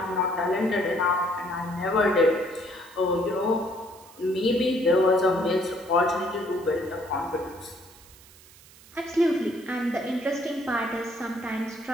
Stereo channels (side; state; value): right; noise; hiss, 23 dB below the sound